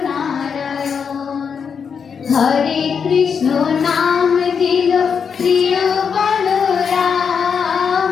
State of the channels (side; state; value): right; quieter; 6.5 dB